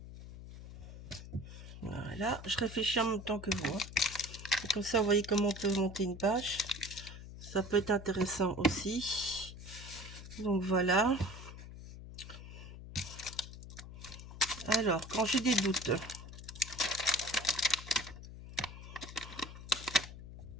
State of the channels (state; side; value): noise; left; hum, 13 dB below the sound